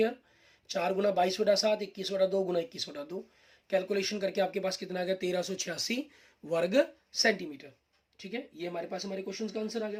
4 गुना 22/7, 21/2 गुना 21/2। कैलकुलेशन करके आपके पास कितना आ गया, 1386 वर्ग सेंटीमीटर। ठीक है, ये हमारे पास हमारे क्वेश्चन का आंसर आ गया।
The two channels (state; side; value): identical; both; correlation 1.00